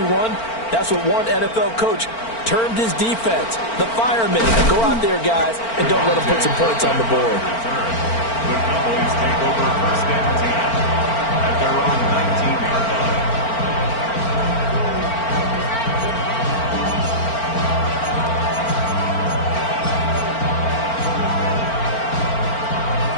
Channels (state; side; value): late; right; 4.4 ms